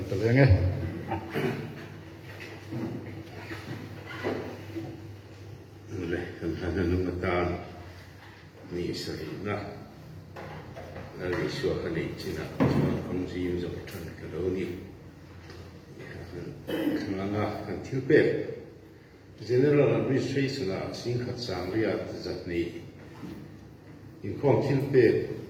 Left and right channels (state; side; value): identical; both; correlation 1.00